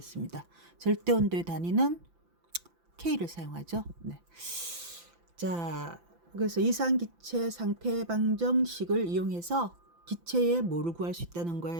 절대 온도의 단위는 K를 사용하죠. 네. 자, 그래서 이상기체 상태 방정식을 이용해서 기체의 뭐를 구할 수 있다는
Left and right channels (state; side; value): late; left; 5.9 ms